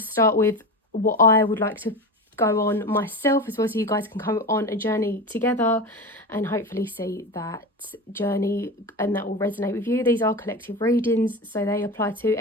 with what I would like to go on myself as well, so you guys can come on a journey together and hopefully see that journey and that will resonate with you. These are collective readings, so they apply to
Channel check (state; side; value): normal; both; correlation 0.24